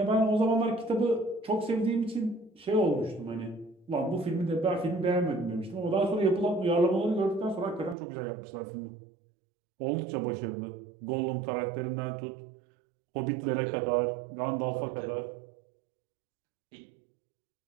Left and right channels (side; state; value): left; drops out; at 8.0 s